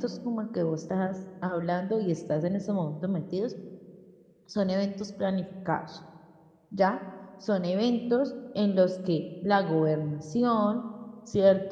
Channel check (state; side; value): identical; both; correlation 1.00